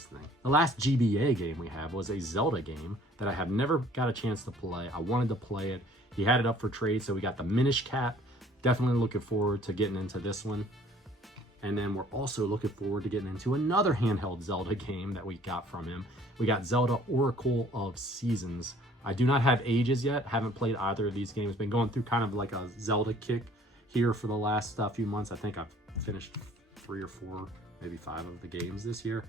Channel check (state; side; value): normal; both; correlation 0.56